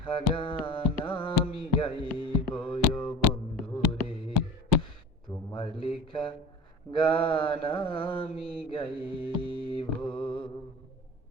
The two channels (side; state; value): both; normal; correlation 0.39